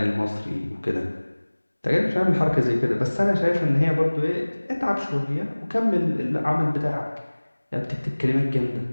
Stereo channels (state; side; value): inverted; both; correlation -1.00